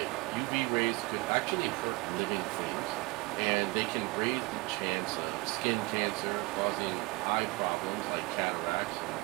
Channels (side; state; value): left; quieter; 25.0 dB